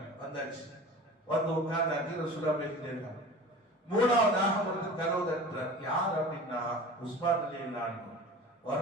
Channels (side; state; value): both; normal; correlation 0.38